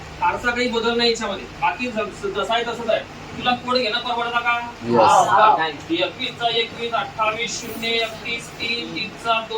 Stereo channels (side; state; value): both; identical; correlation 1.00